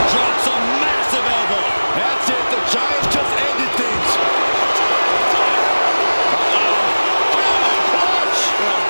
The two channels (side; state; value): both; inverted; correlation -1.00